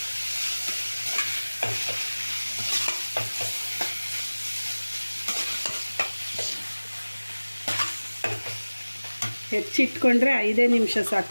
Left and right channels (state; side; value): inverted; both; correlation -1.00